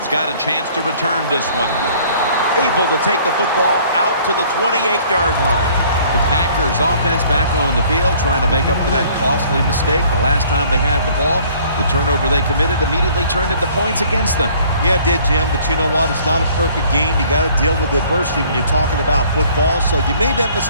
got a chance to return this one. Able to take the football out to the 28-yard line. The Packers offense back on the field trying to make up for that costly mistake. The last time they had the ball, the turnover they committed immediately turned into points against them. Yeah, it did, Jim, but you know what? It's not a perfect game. You got to deal with adversity when you're talking about football. So you made that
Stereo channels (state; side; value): inverted; both; correlation -0.56